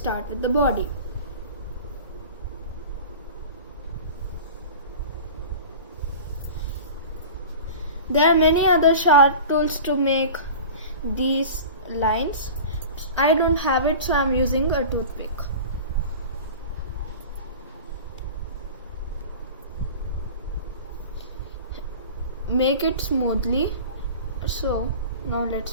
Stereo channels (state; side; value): inverted; both; correlation -0.36